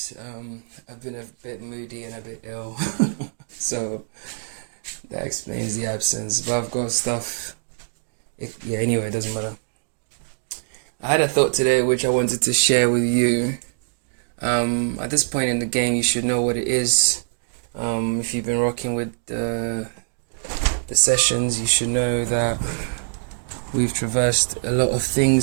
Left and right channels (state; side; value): silent; left; digital silence